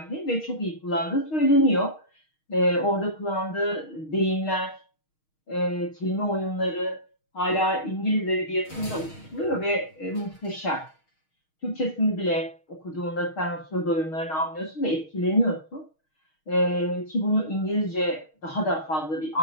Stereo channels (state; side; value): late; right; 6.4 ms